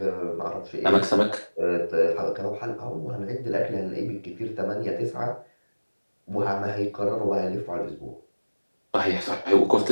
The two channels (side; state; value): both; inverted; correlation -1.00